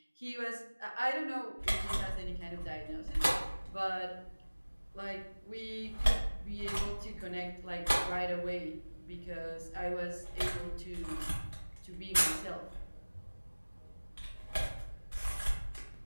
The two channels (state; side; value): inverted; both; correlation -1.00